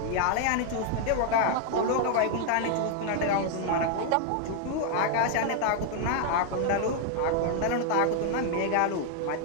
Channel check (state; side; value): different; both; correlation 0.00